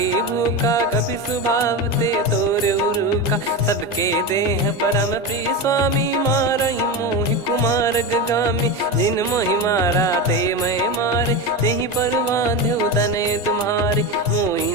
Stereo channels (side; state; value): both; normal; correlation 0.19